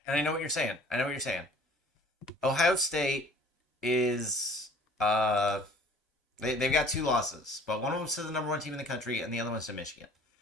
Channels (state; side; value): normal; both; correlation 0.52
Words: And I know what you're saying. Ohio State is they've got two losses, but one of them's to the number one team in the country, and the other one's to Michigan.